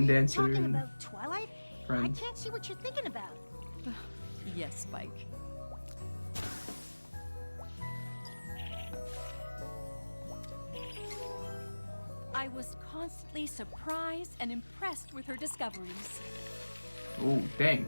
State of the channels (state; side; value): inverted; both; correlation -1.00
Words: you Dancer talking and about Twilight? Friends. I can't see what you're thinking about. Yes, Spike. I was constantly surprised and impressed with her discoveries. Oh, dang.